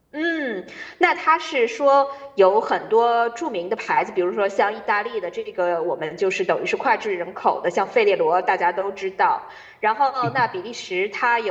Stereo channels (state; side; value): identical; both; correlation 1.00